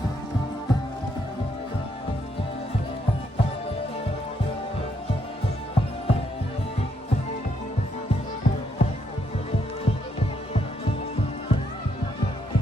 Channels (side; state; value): both; normal; correlation 0.75